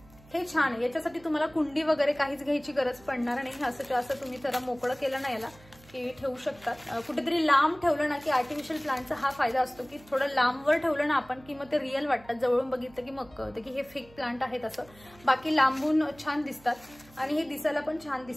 हे छान आहे. याच्यासाठी तुम्हाला कुंडी वगैरे काहीच घ्यायची गरज पडणार नाही. असं तुम्ही जरा मोकळं केलं ना याला की ठेवू शकतात. कुठेतरी लांब ठेवलं ना की आर्टिफिशियल प्लांटचा हा फायदा असतो की थोडं लांबवर ठेवलं ना आपण की मग ते रिअल वाटतात. जवळून बघितलं की मग कळतं की हे फेक प्लांट आहेत असं. बाकी लांबून छान दिसतात आणि हे दिसायला पण छान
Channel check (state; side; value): noise; right; hum, 24 dB below the sound